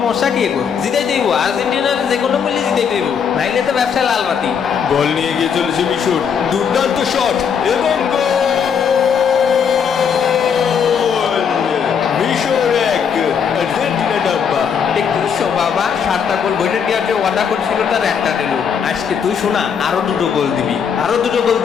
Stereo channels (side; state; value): right; quieter; 7.1 dB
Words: কি এগো? জিতাই দেব, আর্জেন্টিনার যে কোনো বললে জিতাই দেব, নাইলে তো ব্যবসা লাল বাতি। বল নিয়ে গিয়ে চলেছে মিশর, দুর্দান্ত শট এবং গোল! মিশর 1, আর্জেন্টিনা ডাব্বা। দেখছো বাবা, 7টা গোল বইটা দেওয়ার যে ওয়াদা করছিল তার একটা দিল। আজকে তুই শোনা, আরো 2টো গোল দিবি, আরো 2টো গোল